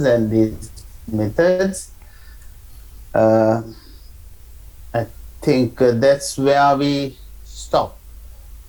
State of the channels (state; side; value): identical; both; correlation 1.00